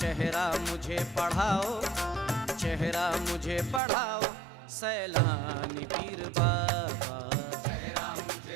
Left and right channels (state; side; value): drops out; left; at 3.8 s